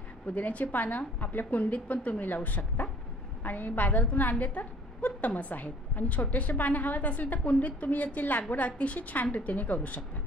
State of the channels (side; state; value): both; normal; correlation 0.54